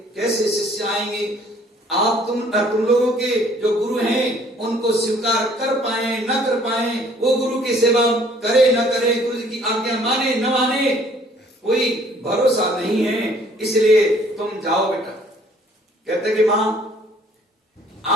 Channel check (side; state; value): both; normal; correlation 0.59